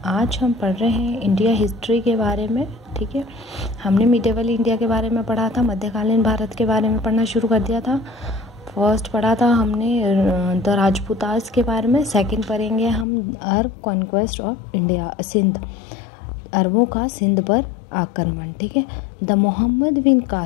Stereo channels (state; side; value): drops out; right; at 13.1 s